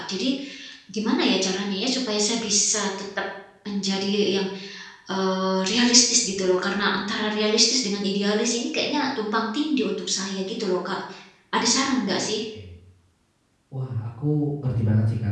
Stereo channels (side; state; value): both; identical; correlation 1.00